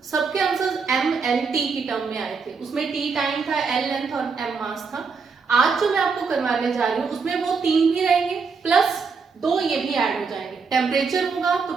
सबके आंसर्स एम एल टी की टर्म में आए थे। उसमें टी टाइम था, एल लेंथ और एम मास था। आज जो मैं आपको करवाने जा रही हूँ उसमें वो 3 भी रहेंगे, प्लस 2 ये भी ऐड हो जाएंगे। टेम्परेचर होगा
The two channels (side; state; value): left; quieter; 5.1 dB